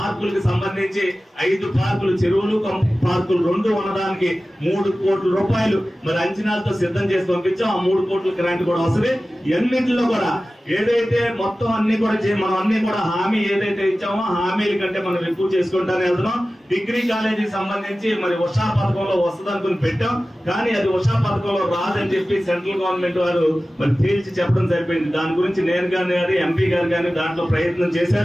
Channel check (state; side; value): normal; both; correlation 0.96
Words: సంబంధించి 5 పార్కులు, చెరువులు పార్కులు 2 ఉండడానికి 3 కోట్ల రూపాయలు మరి అంచనాలతో సిద్ధం చేసి పంపించాం. ఆ 3 కోట్ల గ్రాంట్ కూడా వస్తుంది. ఎన్నింటిలో కూడా ఏదైతే మొత్తం అన్ని కూడా మనం అన్ని కూడా హామీ ఏదైతే ఇచ్చామో హామీల కంటే మనం ఎక్కువ చేసుకుంటానే వెళ్తున్నాం. డిగ్రీ కాలేజీకి సంబంధించి మరి ఉషా పథకంలో వస్తుంది అనుకుని పెట్టాం, కానీ అది ఉషా పథకంలో రాదని చెప్పి సెంట్రల్ గవర్నమెంట్ వారు మరి తేల్చి చెప్పడం సరిపోయింది. దాని గురించి నేను కానీ ఎంపీ గారు కానీ దాంట్లో ప్రయత్నం